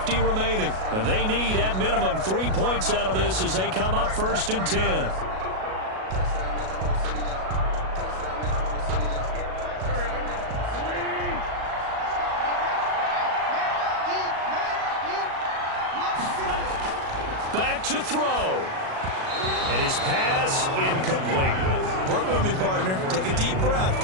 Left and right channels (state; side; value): late; left; 37 ms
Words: remaining. And they need, at minimum, 3 points out of this as they come up 1st and 10. Back to throw. And his pass incomplete. Work with me, partner. Take a deep breath,